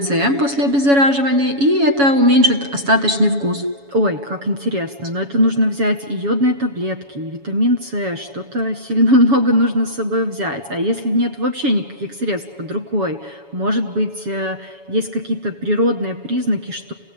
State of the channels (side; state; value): left; late; 7.1 ms